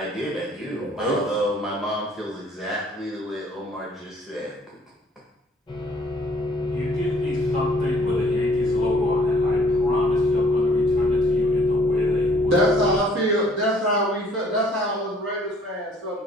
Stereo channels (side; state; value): both; normal; correlation 0.59